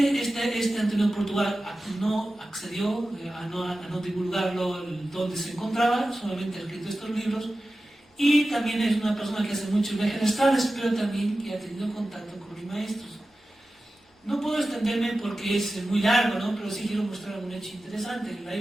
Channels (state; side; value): normal; both; correlation 0.94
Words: Antonio Portugal no accedió a no divulgarlo donde se encontraba, solamente ha escrito estos libros, y también es una persona que hace muchos viajes astrales, pero también que ha tenido contacto con los maestros. No puedo extenderme porque es muy largo, ¿no? Pero sí quiero mostrar un hecho interesante. En la